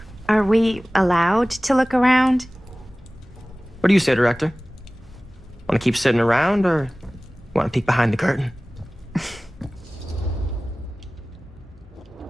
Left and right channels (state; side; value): normal; both; correlation 0.98